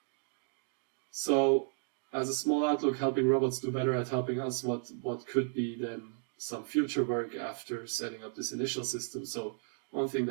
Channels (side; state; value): left; silent; digital silence